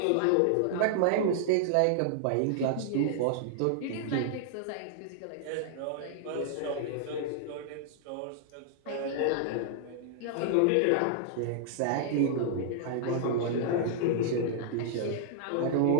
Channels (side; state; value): both; different; correlation -0.01